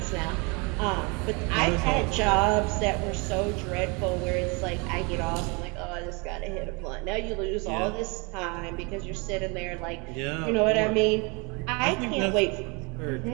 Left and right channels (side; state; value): left; quieter; 30.1 dB